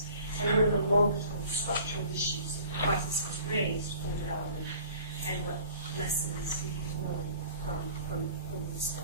and what are the longer-term structural issues that the crisis has raised for development, and what lessons we can learn from the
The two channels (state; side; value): inverted; both; correlation -0.48